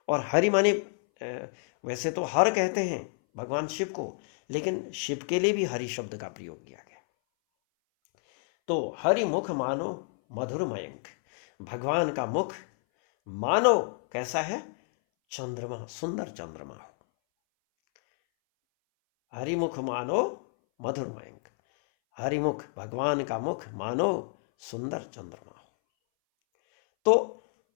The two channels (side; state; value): right; silent; 58 dB below the other